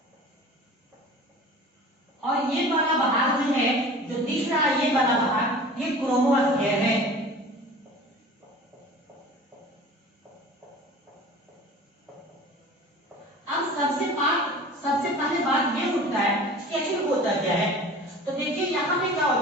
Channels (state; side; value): normal; both; correlation 0.41